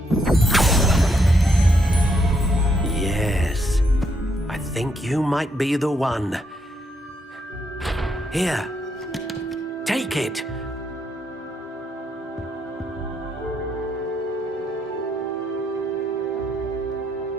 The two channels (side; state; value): both; normal; correlation 0.76